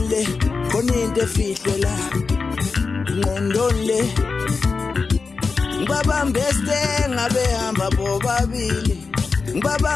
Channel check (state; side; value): quieter; right; 4.6 dB